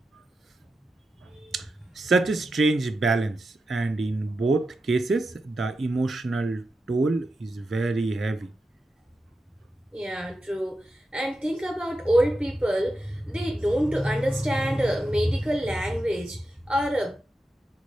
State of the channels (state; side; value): normal; both; correlation 0.89